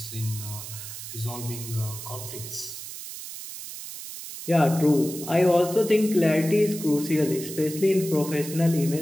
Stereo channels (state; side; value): noise; right; hiss, 10 dB below the sound